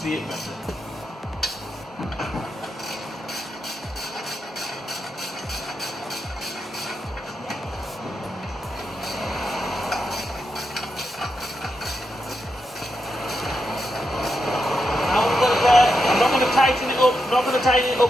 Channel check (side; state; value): both; normal; correlation 0.85